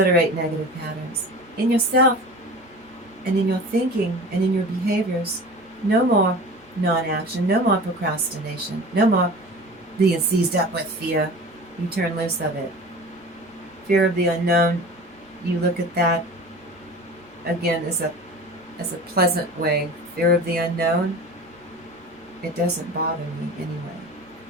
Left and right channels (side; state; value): both; normal; correlation 0.37